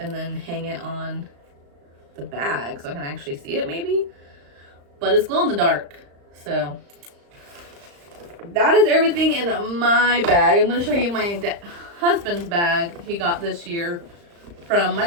then hang it on the bag so I can actually see it maybe. But it's glow in the dark. So that is everything in my bag. I'm going to show you my husband's bag he got this year from my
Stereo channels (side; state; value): left; late; 35 ms